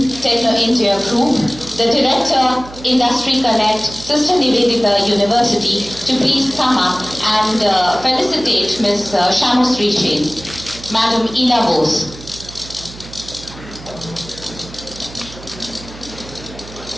Techno India Group, the Director, Industry Connect, Sister Nivedita University, to please come up and felicitate Ms. Shamosri Jain. Madam Ina Bose.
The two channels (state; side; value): noise; right; hum, 16 dB below the sound